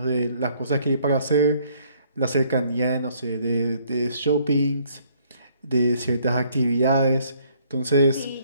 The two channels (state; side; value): inverted; both; correlation -0.64